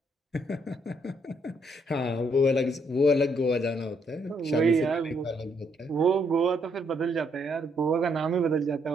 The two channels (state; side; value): normal; both; correlation 0.72